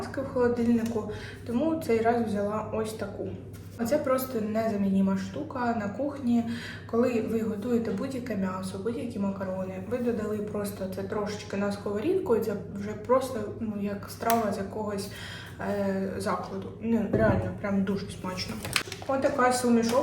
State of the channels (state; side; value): identical; both; correlation 1.00